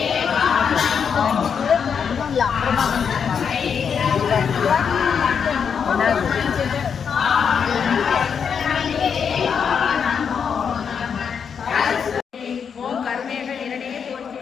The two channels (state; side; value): quieter; right; 6.9 dB